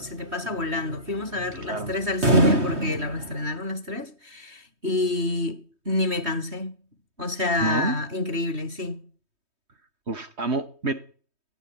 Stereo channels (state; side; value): late; left; 3.2 ms